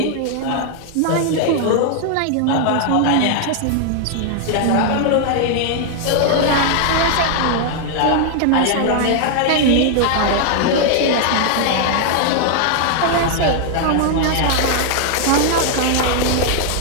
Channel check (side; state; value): both; different; correlation 0.00